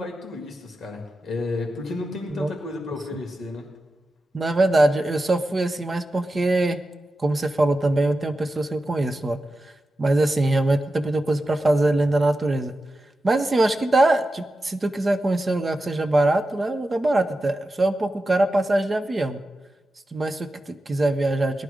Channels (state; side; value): normal; both; correlation 0.91